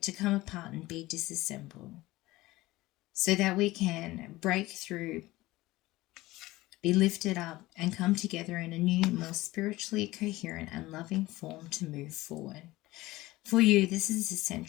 to come apart and be disassembled, so that we can break through, be lifted up, and come together in a new, more spiritually coherent and loving form to move forward. For you, this is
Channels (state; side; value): quieter; right; 18.7 dB